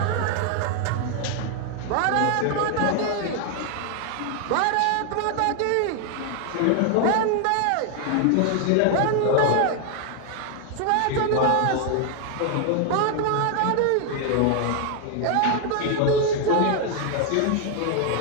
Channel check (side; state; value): both; different; correlation 0.00